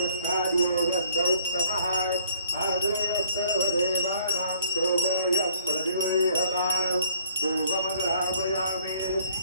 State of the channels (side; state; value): both; inverted; correlation -0.61